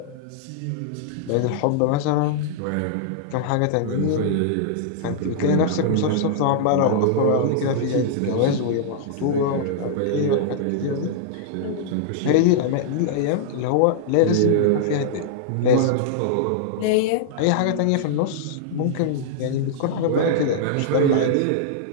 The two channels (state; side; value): different; both; correlation -0.01